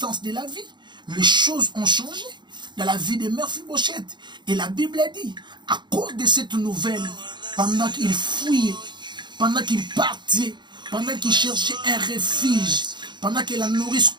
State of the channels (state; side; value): late; left; 0.22 ms